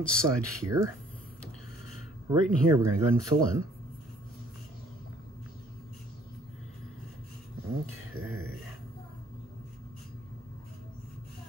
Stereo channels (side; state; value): both; normal; correlation 0.59